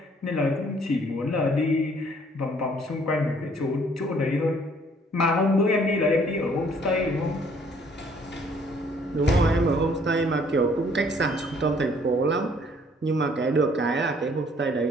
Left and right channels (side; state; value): both; normal; correlation 0.61